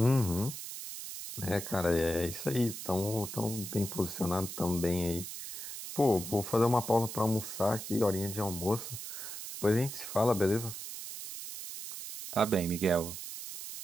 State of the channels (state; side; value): noise; right; hiss, 9 dB below the sound